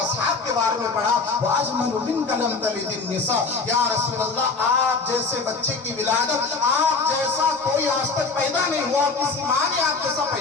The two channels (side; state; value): right; quieter; 4.3 dB